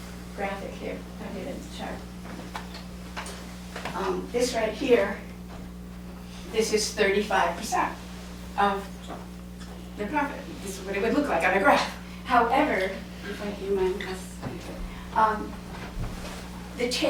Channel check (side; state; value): both; identical; correlation 1.00